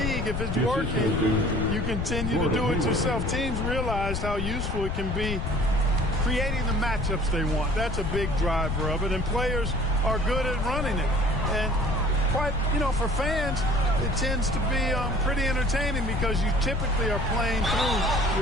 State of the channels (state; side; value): noise; left; rumble, 2 dB below the sound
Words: If it's working, you continue to do it yourself. Teams realize how useful it can be creating the matchups they want. That's a big driver of it. And players are good at running it. And quite, you know, for fans, it tends to be pretty entertaining because you typically are playing through